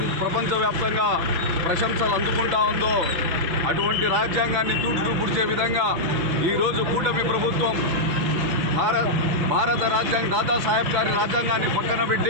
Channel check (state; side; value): late; left; 6.2 ms